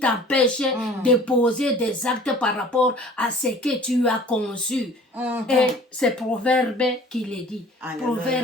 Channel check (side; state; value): both; normal; correlation 0.48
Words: de poser des actes par rapport à ce que tu as conçu. Et c'est Proverbe qui le dit.